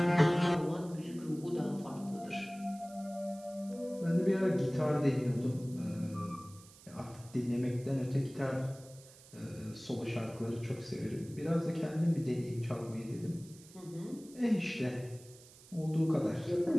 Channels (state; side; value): noise; right; hiss, 22 dB below the sound